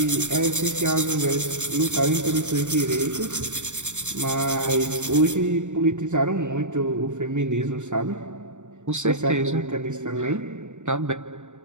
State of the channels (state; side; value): late; left; 0.85 ms